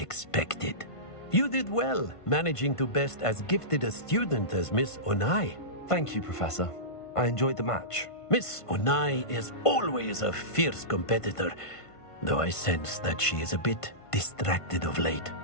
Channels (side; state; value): right; late; 1.5 ms